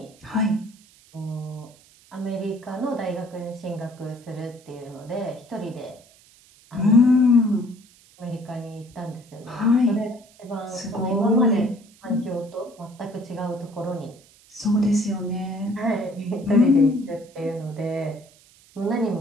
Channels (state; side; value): noise; right; hiss, 27 dB below the sound